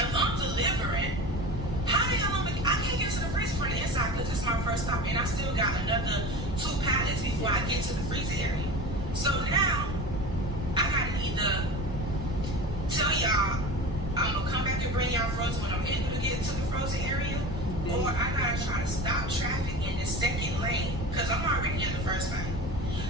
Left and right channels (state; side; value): noise; left; rumble, 8 dB below the sound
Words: I'm delivering, how the hell I can't get to the freezer from the inside because it's my first stop and I still got another 2 pallets before I get to the freezer area. So now I gotta either tell y'all I'm gonna come back and bring y'all frozen when I'm able to get to the frozen area, or I gotta try to stop traffic in the second lane because I'm already in the first lane.